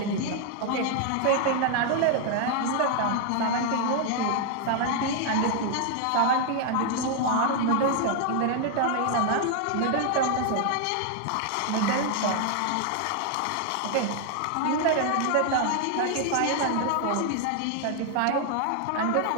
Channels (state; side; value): different; both; correlation 0.00